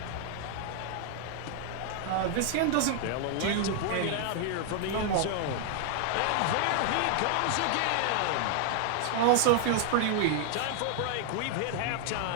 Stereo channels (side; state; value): both; different; correlation 0.00